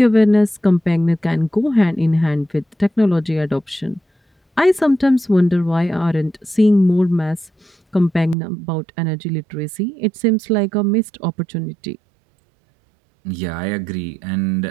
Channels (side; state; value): left; drops out; at 8.3 s